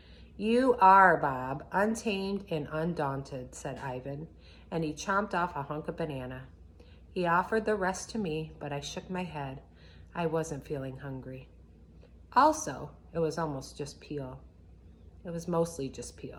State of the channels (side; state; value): both; identical; correlation 1.00